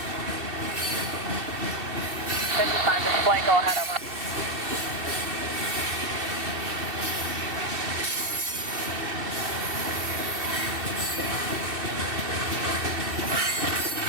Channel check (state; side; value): late; left; 2.6 ms